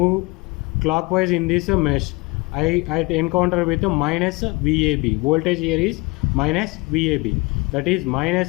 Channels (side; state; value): right; quieter; 25.4 dB